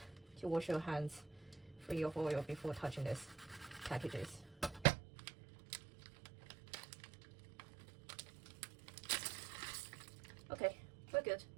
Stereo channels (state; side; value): drops out; left; at 4.9 s